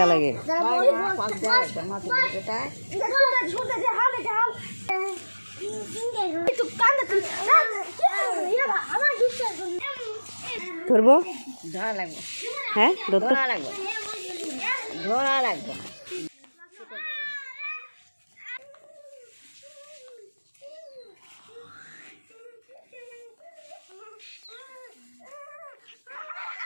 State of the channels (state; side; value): inverted; both; correlation -1.00